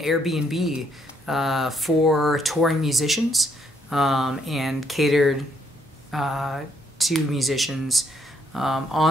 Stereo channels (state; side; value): normal; both; correlation 0.71